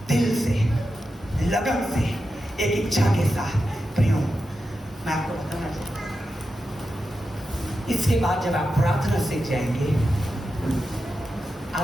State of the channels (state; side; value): normal; both; correlation 0.90